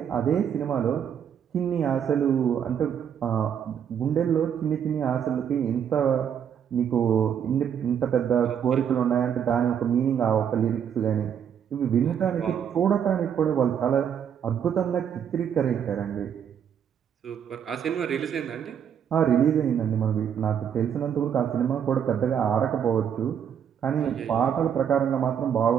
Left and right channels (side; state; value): left; quieter; 8.4 dB